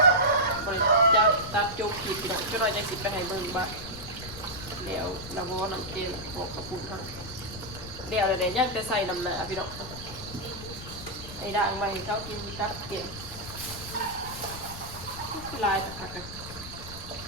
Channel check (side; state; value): left; noise; rumble, 13 dB below the sound